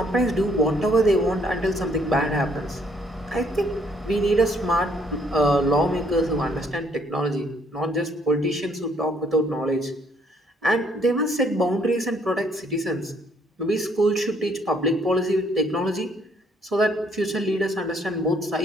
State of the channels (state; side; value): normal; both; correlation 0.66